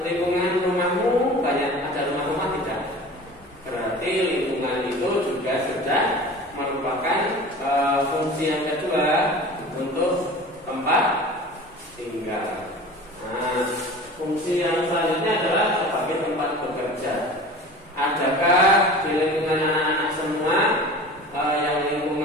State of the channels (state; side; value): normal; both; correlation 0.39